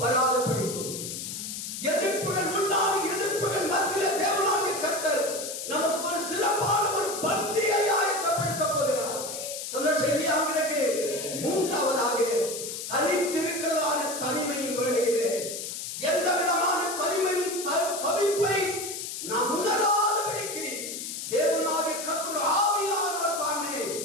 வராத படிக்கும். எதிர்ப்புகள் உண்டான எதிர்ப்புகள் மத்தியிலே தேவனாகிய கர்த்தர் நமக்கு ஒரு சிறப்பான ஒரு பந்தியை ஆயத்தப்படுத்த போகிறார். சந்தோஷம் இல்லையா உங்களுக்கு? மூன்றாவதாக தனித்திருக்கிறதான தனிமையின் வேளையிலே எந்த விதமான தனிமையின் தவிப்பை நாம் உணராதபடிக்கு தேவனாகிய கர்த்தர் ஆவியானவர் தாமே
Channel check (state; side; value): noise; left; hiss, 6 dB below the sound